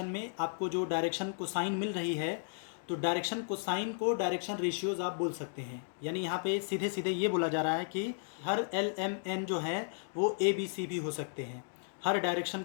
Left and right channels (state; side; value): silent; right; digital silence